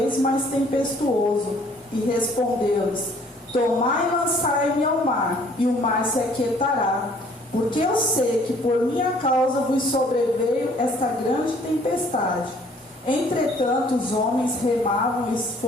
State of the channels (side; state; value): both; normal; correlation 0.58